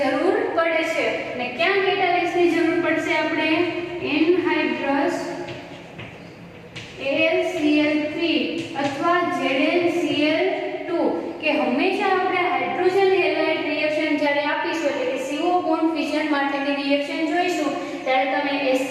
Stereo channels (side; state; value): both; identical; correlation 1.00